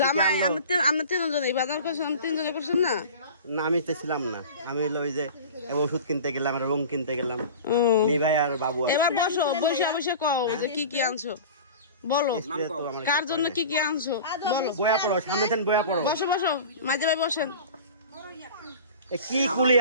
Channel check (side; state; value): both; inverted; correlation -0.37